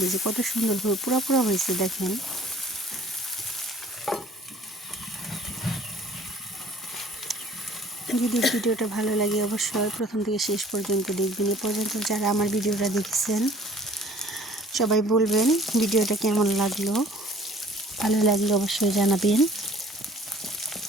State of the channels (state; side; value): normal; both; correlation 0.53